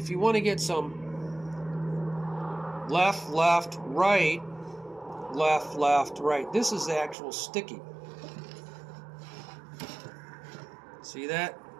you want to get some left, left, right, left, left, right, this is the actual sticking. See that?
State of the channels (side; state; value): left; drops out; at 7.2 s